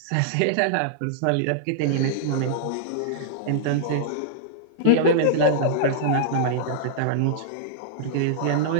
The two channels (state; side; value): different; both; correlation -0.02